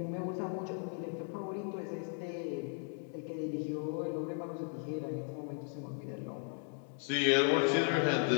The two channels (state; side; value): silent; right; 54 dB below the other